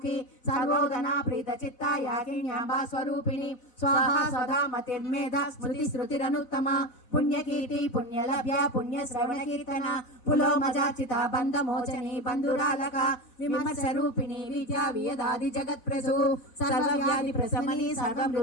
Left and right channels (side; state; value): right; late; 4.3 ms